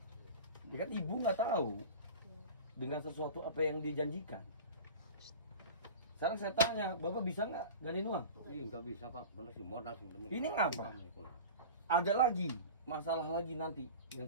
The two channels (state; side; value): inverted; both; correlation -0.34